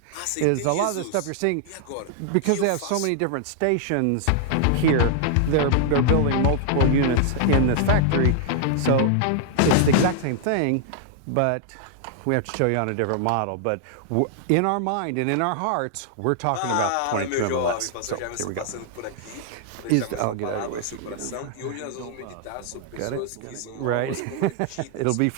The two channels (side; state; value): both; different; correlation -0.01